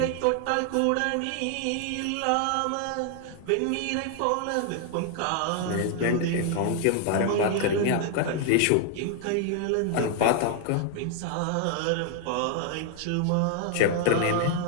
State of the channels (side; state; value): both; different; correlation 0.00